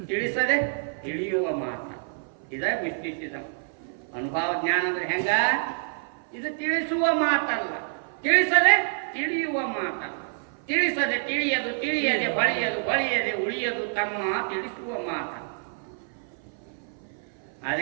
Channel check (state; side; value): silent; left; 56 dB below the other